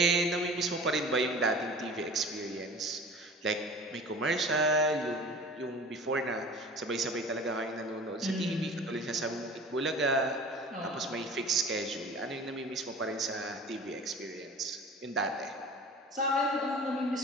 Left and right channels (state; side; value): normal; both; correlation 0.41